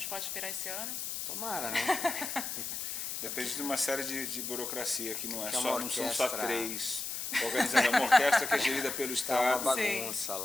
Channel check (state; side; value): noise; left; hiss, 4 dB below the sound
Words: pode esperar esse ano? Tomara, né? Depende de uma série de burocracia que não Que são só 3 organizando uma orquestra que é gerida pelo Estado. Tá uma bagunça